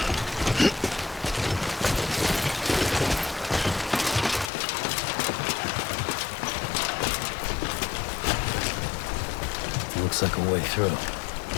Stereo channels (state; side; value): drops out; right; at 4.5 s